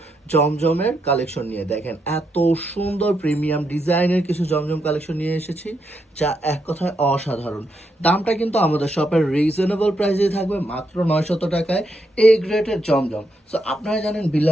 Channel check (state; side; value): normal; both; correlation 0.80